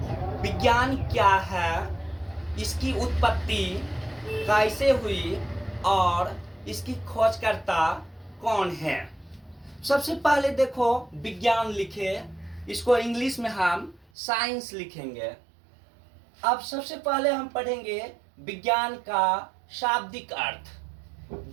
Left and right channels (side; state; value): left; drops out; at 14.1 s